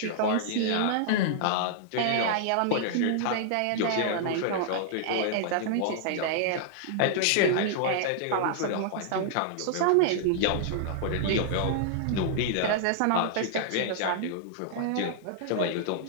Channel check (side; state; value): both; different; correlation -0.01